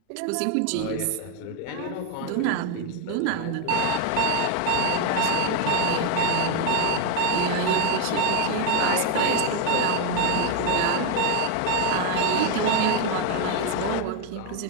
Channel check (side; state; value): both; different; correlation 0.01